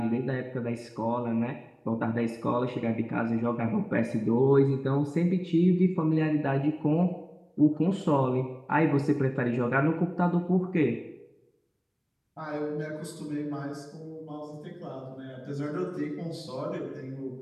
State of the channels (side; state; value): both; identical; correlation 1.00